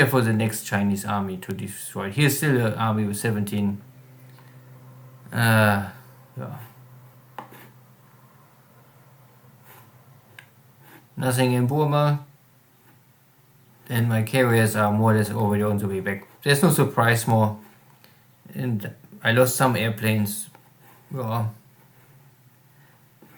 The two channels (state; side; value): identical; both; correlation 1.00